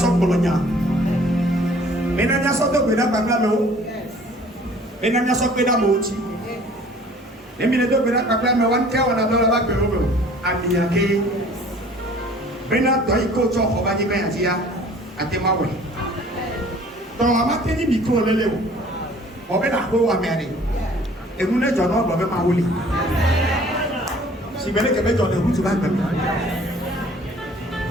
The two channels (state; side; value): normal; both; correlation 0.52